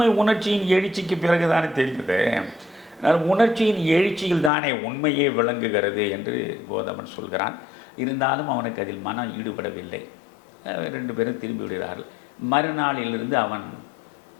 உணர்ச்சியின் எழுச்சிக்கு பிறகுதானே தெரியுது. உணர்ச்சியின் எழுச்சியில் தானே உண்மையே விளங்குகிறது என்று கோதமன் சொல்கிறான். இருந்தாலும் அவனுக்கு அதில் மனம் ஈடுபடவில்லை. 2 பேரும் திரும்பி விடுகிறார்கள். மறுநாளிலிருந்து அவன்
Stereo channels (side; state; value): right; drops out; at 4.5 s